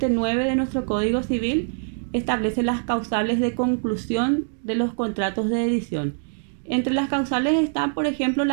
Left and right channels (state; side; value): silent; left; digital silence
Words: de nuestro Código Civil establece las causales de conclusión de los contratos de edición. Entre las causales están, por ejemplo,